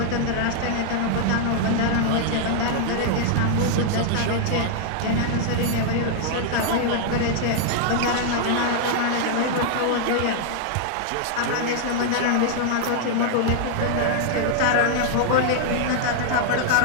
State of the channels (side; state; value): both; different; correlation -0.01